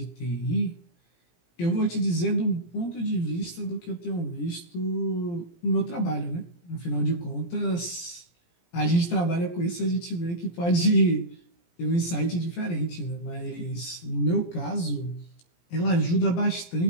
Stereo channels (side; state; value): right; late; 17 ms